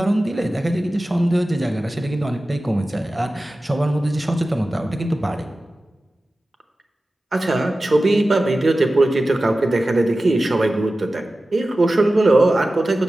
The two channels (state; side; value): normal; both; correlation 0.95